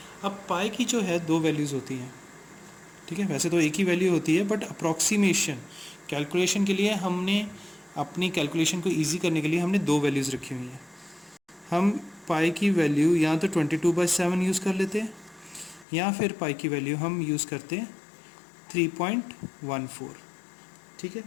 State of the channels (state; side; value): drops out; right; at 15.9 s